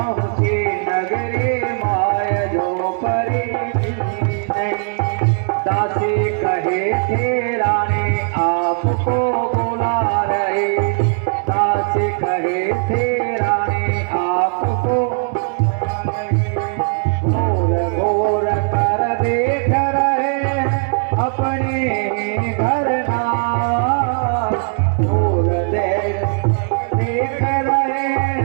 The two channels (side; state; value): left; silent; 63 dB below the other